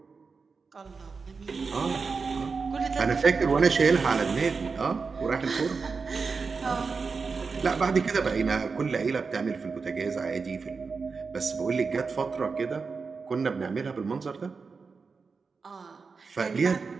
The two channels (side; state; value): left; quieter; 4.8 dB